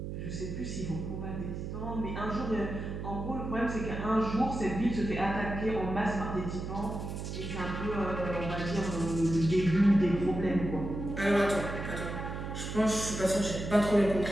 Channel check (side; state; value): right; noise; hum, 6 dB below the sound